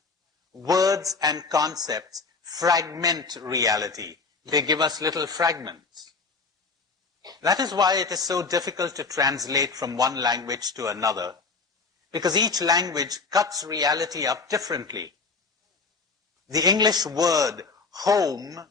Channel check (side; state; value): right; quieter; 4.4 dB